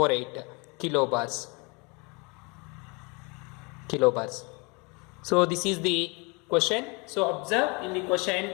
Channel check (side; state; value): right; quieter; 29.7 dB